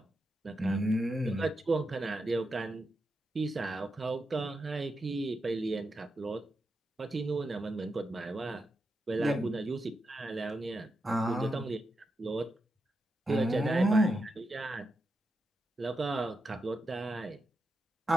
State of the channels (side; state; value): both; normal; correlation 0.87